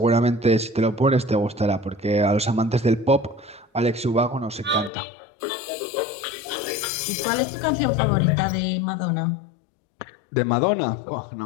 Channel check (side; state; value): right; drops out; at 4.9 s